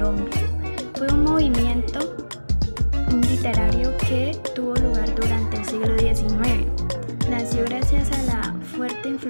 fue un movimiento literario que tuvo lugar durante el siglo XIX. Nació gracias a la fuerte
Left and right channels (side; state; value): both; inverted; correlation -1.00